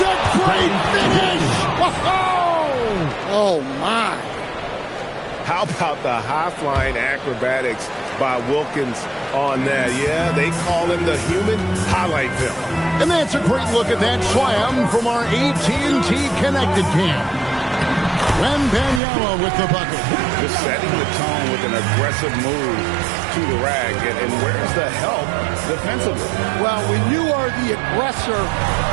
a great finish! Oh, my. How about the high-flying acrobatics by Wilkins on that? Yeah, they call him the human highlight film. And that's a great look at that slam from our AT&T Connected Cam. Wembanyama with the bucket. Just setting the tone with an aggressive move to the rack. And where's the help defensively? Well, when you are the aggressor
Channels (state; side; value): drops out; left; at 19.0 s